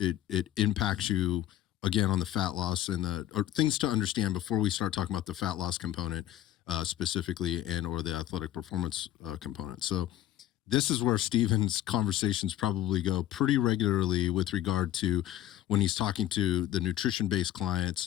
impacts you again on the fat loss or things to understand before we start talking about the fat loss component. Specifically, or the athletic performance component. So this is where Steven's conversations probably go pretty regularly with regard to when he's talking to the nutrition-based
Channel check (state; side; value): quieter; right; 12.8 dB